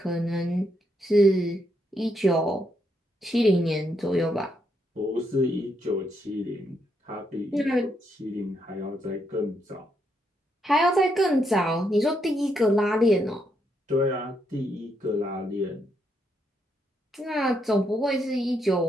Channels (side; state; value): both; normal; correlation 0.78